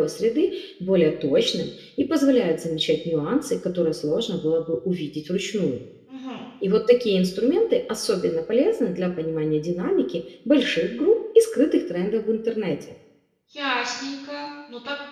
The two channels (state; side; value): identical; both; correlation 1.00